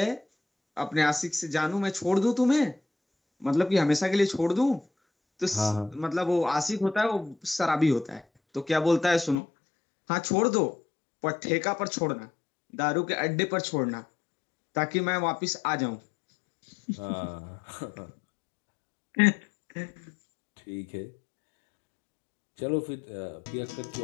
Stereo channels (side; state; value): right; drops out; at 9.3 s